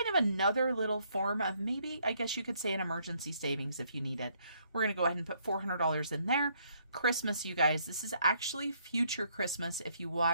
of another little form of maybe, I guess you could say, an emergency savings if you need it. We're going to go ahead and put $400 in there. Christmas, you guys, this is actually future Christmas if you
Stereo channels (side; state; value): both; inverted; correlation -0.69